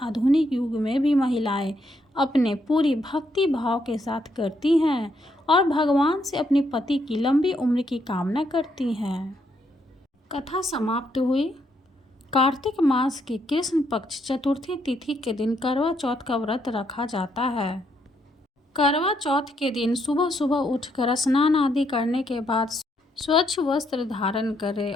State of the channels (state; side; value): normal; both; correlation 0.75